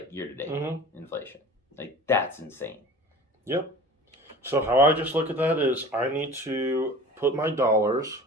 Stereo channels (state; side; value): normal; both; correlation 0.39